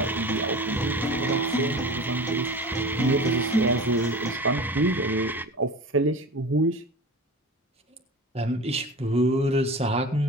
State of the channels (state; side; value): normal; both; correlation 0.34